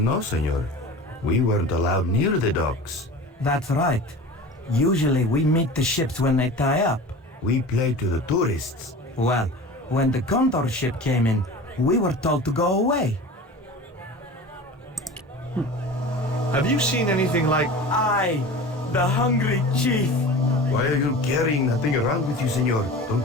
know, senor. We weren't allowed near the docks. That's right. Usually we meet the ships when they tie up. We play to the tourists. Well, when the Condor ship came in, we were told to go away. Have you seen anything like... I, the hungry chief. Why are you carrying that thing around with you, senor?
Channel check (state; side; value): normal; both; correlation 0.36